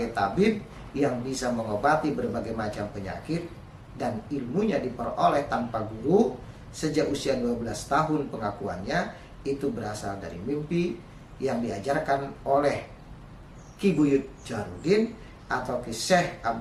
tabib yang bisa mengobati berbagai macam penyakit dan ilmunya diperoleh tanpa guru sejak usia 12 tahun. Pengakuannya itu berasal dari mimpi yang diajarkan oleh Ki Buyut Jaharudin atau Ki Syekh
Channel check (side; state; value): both; identical; correlation 1.00